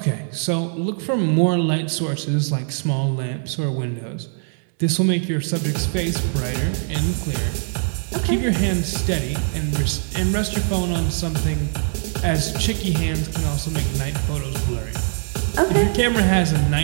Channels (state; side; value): silent; left; 56 dB below the other